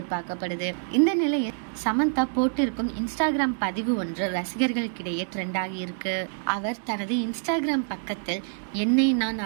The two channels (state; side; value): silent; left; digital silence